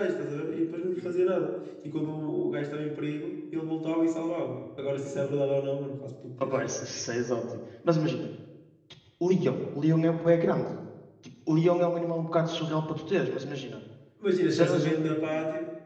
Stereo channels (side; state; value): both; identical; correlation 1.00